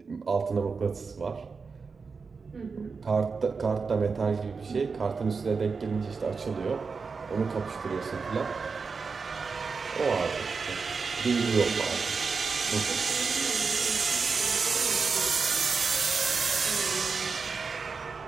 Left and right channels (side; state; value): left; quieter; 4.9 dB